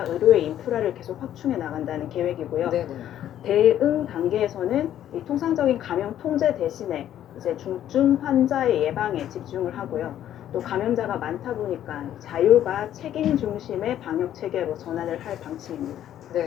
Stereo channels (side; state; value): right; quieter; 11.3 dB